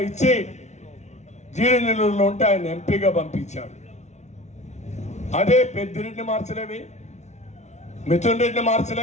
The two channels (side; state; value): right; late; 0.33 ms